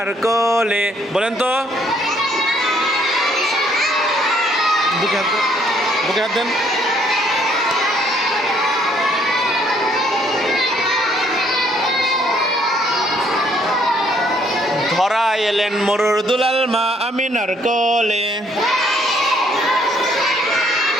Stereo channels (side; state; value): both; normal; correlation 0.66